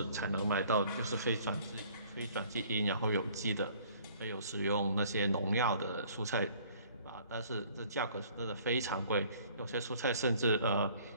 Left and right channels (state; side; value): inverted; both; correlation -0.56